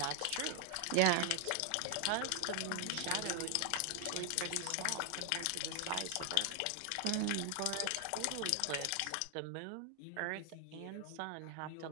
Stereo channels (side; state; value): both; different; correlation 0.00